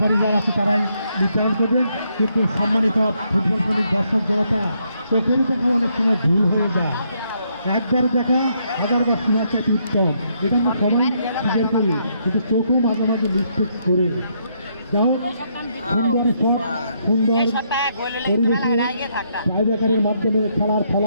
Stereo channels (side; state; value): both; inverted; correlation -0.74